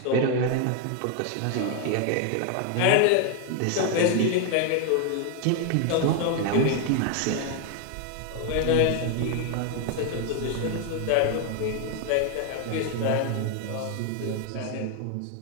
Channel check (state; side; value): different; both; correlation 0.01